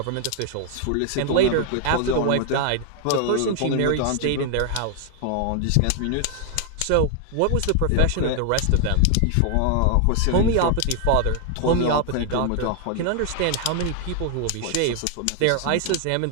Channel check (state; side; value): different; both; correlation 0.00